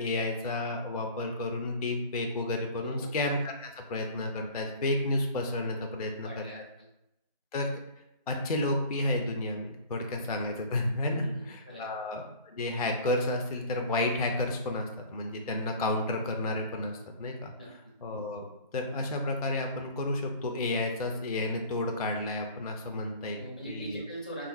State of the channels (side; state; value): both; inverted; correlation -0.43